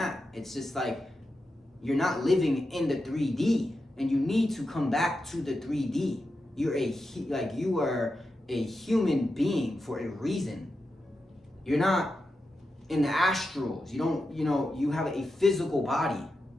It's just like you're not living in the 3D, and you need to come back to the 3D. You are a human being for a reason. You're not in the astrals. You have a physical body.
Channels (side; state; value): both; normal; correlation 0.89